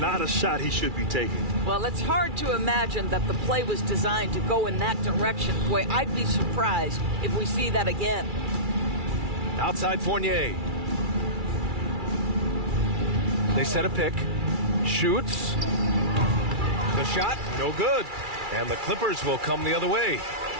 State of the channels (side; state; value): left; late; 2.3 ms